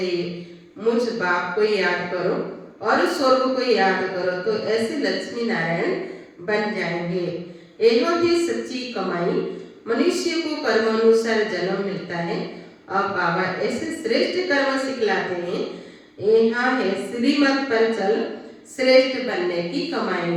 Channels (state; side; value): identical; both; correlation 1.00